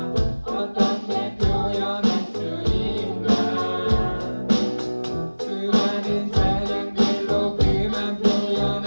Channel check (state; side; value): inverted; both; correlation -1.00